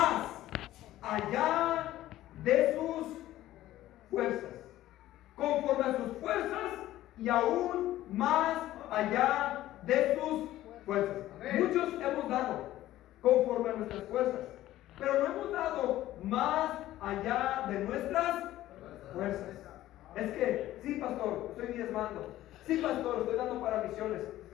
allá de sus fuerzas. Conforme a sus fuerzas y aún más allá de sus fuerzas. Muchos hemos dado conforme a nuestras fuerzas, pero no hemos dado más allá de nuestras fuerzas. Es que, sí, pastor, estoy diezmando. Sí, pastor, estoy dando para misiones,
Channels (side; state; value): right; quieter; 14.6 dB